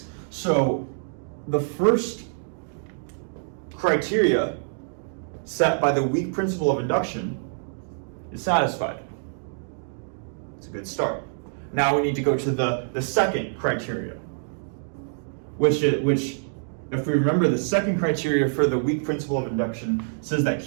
So the first criteria set by the weak principle of induction is satisfied. It's a good start. Now we need to go to the second criteria, which if we remember, the second criteria for the weak principle of induction says that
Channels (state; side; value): silent; left; digital silence